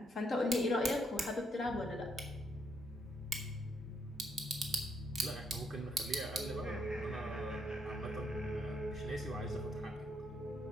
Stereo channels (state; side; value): normal; both; correlation 0.74